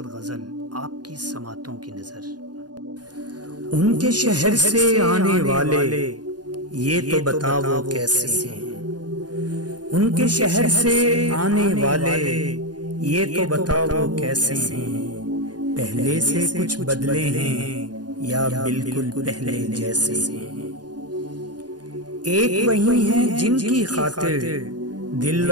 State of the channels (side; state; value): left; late; 0.69 ms